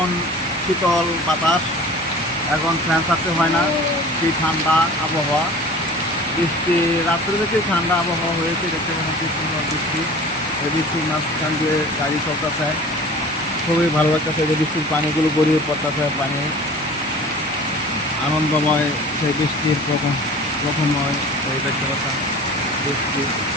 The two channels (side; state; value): both; normal; correlation 0.42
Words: শীতল বাতাস, এখন ফ্যান ছাড়তে হয় না। কি ঠান্ডা আবহাওয়া, বৃষ্টি রাত্রে থেকে ঠান্ডা আবহাওয়া হয়েছে। দেখতে পাচ্ছেন কি সুন্দর বৃষ্টি। এই বৃষ্টির মাঝখান দিয়ে গাড়ি চলতেছে, খুবই ভালো লাগতেছে। যে বৃষ্টির পানিগুলো গড়িয়ে পড়তেছে, পানি আনন্দময়। সেই বৃষ্টির প্রথমময় এই দেখতে পাচ্ছেন বৃষ্টি,